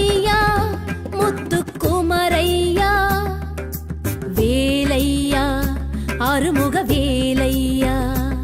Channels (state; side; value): identical; both; correlation 1.00